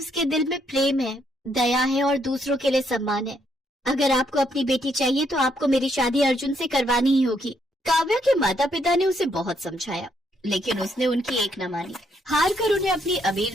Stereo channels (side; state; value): both; normal; correlation 0.73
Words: दिल में प्रेम है, दया है और दूसरों के लिए सम्मान है। अगर आपको अपनी बेटी चाहिए तो आपको मेरी शादी अर्जुन से करवानी ही होगी। काव्या के माता पिता ने उसे बहुत समझाया, लेकिन उसने उनकी एक न मानी। हार कर उन्हें अपनी